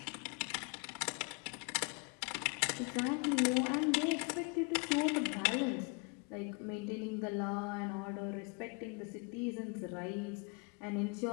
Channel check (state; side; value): quieter; right; 32.2 dB